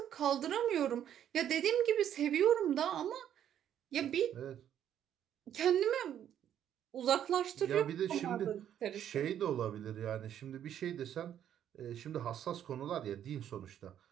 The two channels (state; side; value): quieter; left; 10.1 dB